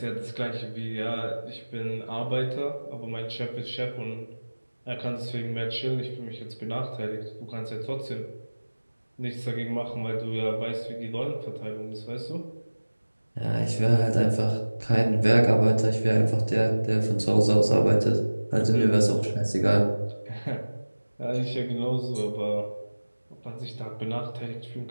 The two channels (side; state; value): both; inverted; correlation -1.00